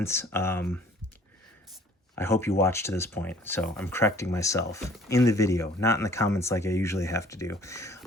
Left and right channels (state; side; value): normal; both; correlation 0.53